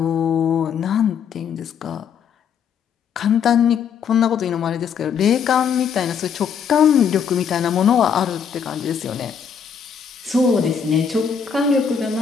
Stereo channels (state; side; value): quieter; right; 7.1 dB